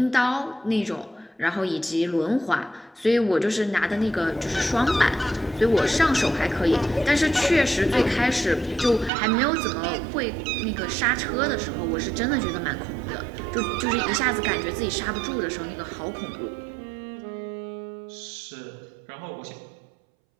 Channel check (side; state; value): left; drops out; at 9.1 s